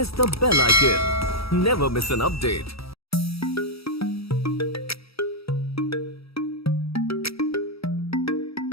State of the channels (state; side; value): late; right; 0.76 ms